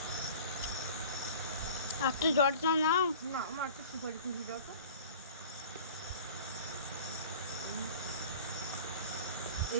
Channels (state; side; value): inverted; both; correlation -0.43